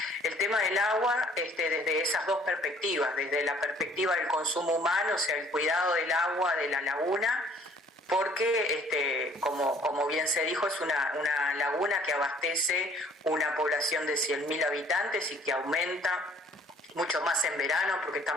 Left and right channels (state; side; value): normal; both; correlation 0.57